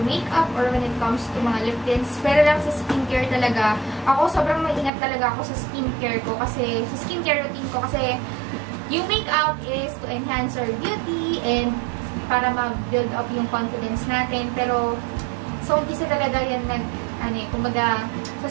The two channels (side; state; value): left; drops out; at 4.9 s